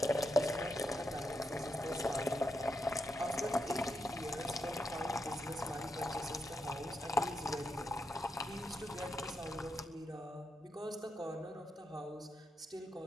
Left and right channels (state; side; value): normal; both; correlation 0.84